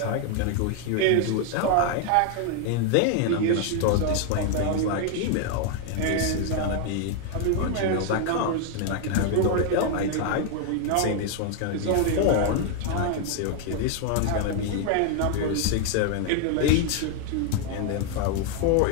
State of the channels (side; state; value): both; different; correlation 0.00